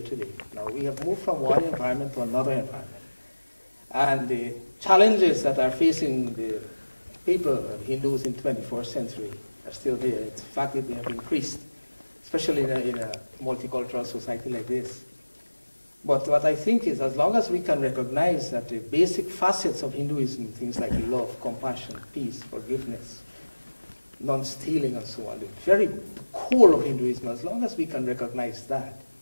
today. Now, we have moved from one environment to another environment. And the challenges that are facing the people, Hindus in 21st century, are still there. In fact, they have increased, especially in a multicultural society like this. But what I think is, as long as we can recognize that the basic facets of Hinduism, things like love, compassion, peace, forgiveness, non-stealing, and so on, the very core of Hinduism, as long as we can recognize that,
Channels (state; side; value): inverted; both; correlation -1.00